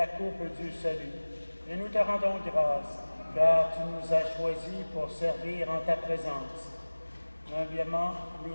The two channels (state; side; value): inverted; both; correlation -1.00